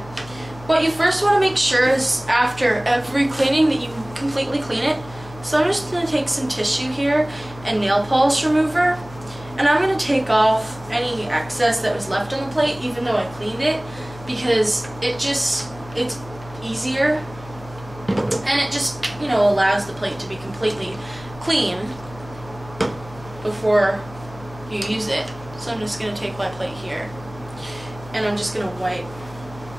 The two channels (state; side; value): noise; left; hum, 18 dB below the sound